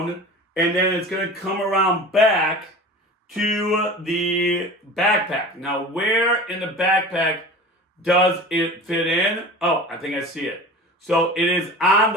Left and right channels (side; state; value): both; normal; correlation 0.36